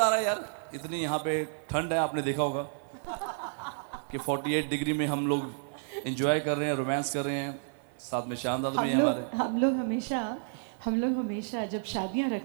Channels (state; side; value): silent; left; digital silence